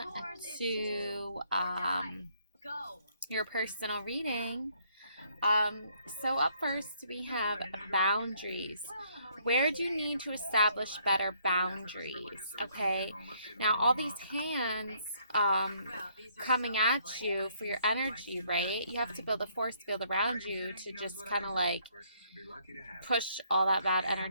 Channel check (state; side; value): inverted; both; correlation -0.67